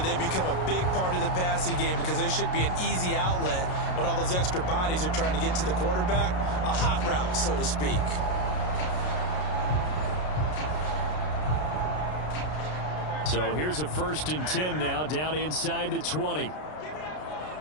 they become a big part of the passing game because they should be an easy outlet when all those extra bodies are trying to get to the quarterback. A hot route, so to speak. So here's a 1st and 10 now down inside the 20.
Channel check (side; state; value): right; late; 33 ms